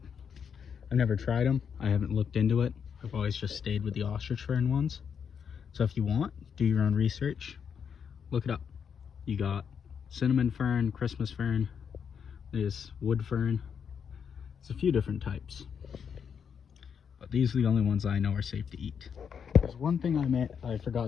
I've never tried them. I haven't looked into it. I've always just stayed with the ostrich fern ones. So if you want, do your own research. Look it up. You got cinnamon fern, Christmas fern, there's wood fern. There's a few different types. But these are the only ones I know are safe to eat. There's one thing I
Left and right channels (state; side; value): quieter; right; 7.1 dB